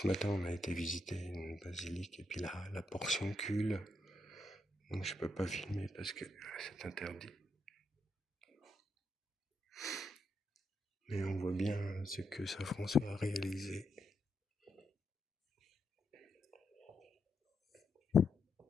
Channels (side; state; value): both; normal; correlation 0.81